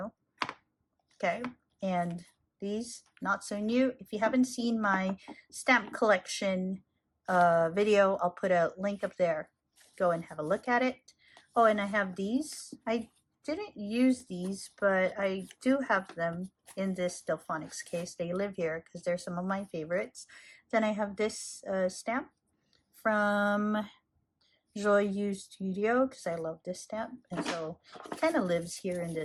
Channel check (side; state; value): both; identical; correlation 1.00